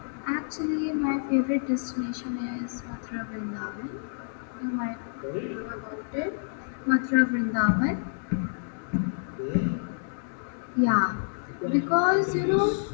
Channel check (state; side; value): silent; right; digital silence